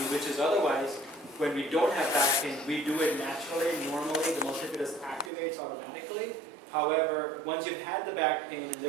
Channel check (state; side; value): drops out; left; at 5.3 s